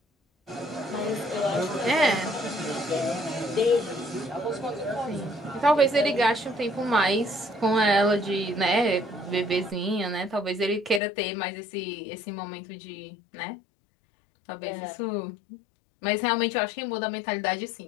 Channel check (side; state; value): right; drops out; at 11.0 s